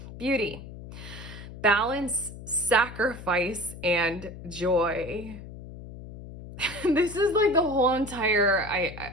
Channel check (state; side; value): noise; left; hum, 13 dB below the sound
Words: beauty, balance, sacrifice, and joy. This is like the whole entire